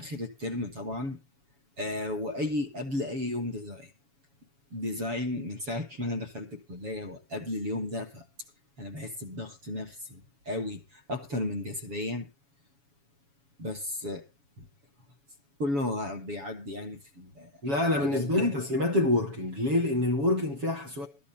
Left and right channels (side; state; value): left; late; 7.1 ms